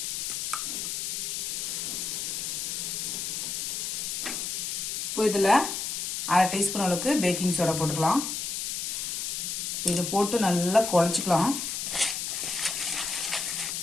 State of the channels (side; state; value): left; noise; hiss, 2 dB below the sound